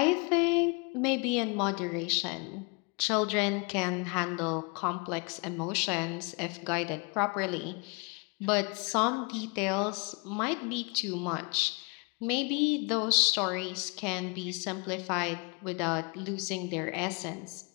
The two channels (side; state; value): right; quieter; 31.8 dB